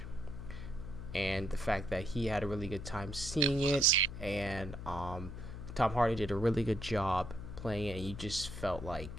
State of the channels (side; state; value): left; noise; hum, 9 dB below the sound